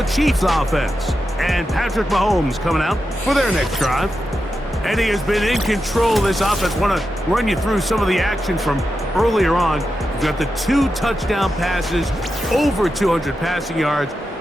Chiefs offense. And Patrick Mahomes coming out for their next drive. And he has been in control of this offense. Want to run you through some of the action from earlier on. He's got the 2 touchdown passes, over 200 passing yards.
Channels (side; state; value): both; normal; correlation 0.89